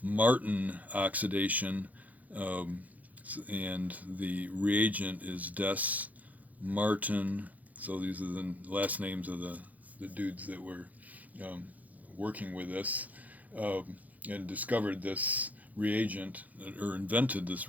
oxidation, and the reagent is Des-Martin. So these are the last names of the dudes that were working with this and discovered this reagent, or invented this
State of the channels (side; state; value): left; late; 0.078 ms